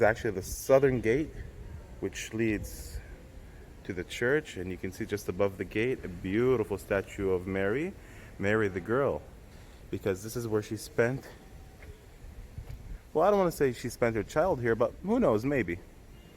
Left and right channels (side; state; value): both; identical; correlation 1.00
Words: actually the southern gate, which leads to the church, and you can see just above the gate a beautiful statue of Mary the girl, because this is where she spent, well, I don't want to say she spent her child here, but who knows, maybe.